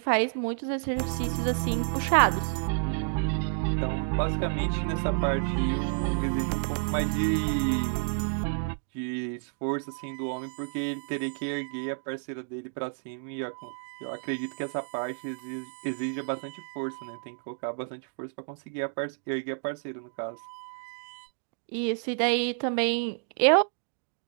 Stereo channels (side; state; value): left; silent; digital silence